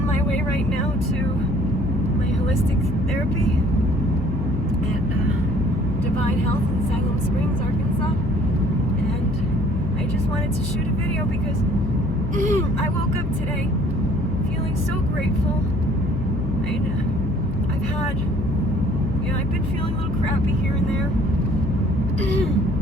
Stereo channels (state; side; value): noise; left; hum, 5 dB below the sound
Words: my way right now to my holistic therapy at Divine Health in Salem Springs, Arkansas. And I just wanted to shoot a video because I woke up today feeling so grateful. I've had, I've been feeling a little crappy here and there.